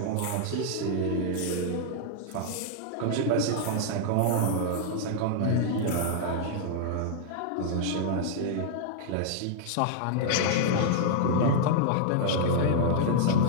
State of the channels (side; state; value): both; different; correlation -0.01